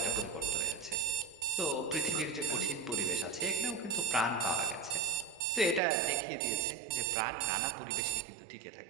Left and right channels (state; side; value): drops out; left; at 5.8 s